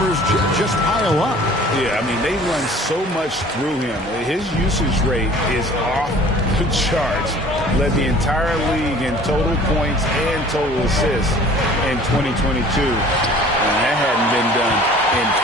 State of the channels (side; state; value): both; normal; correlation 0.49